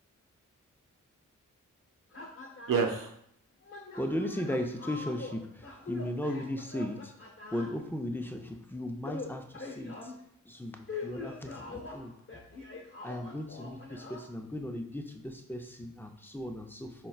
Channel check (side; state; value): both; normal; correlation 0.55